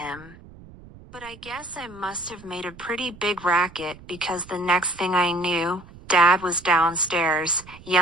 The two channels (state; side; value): noise; right; rumble, 20 dB below the sound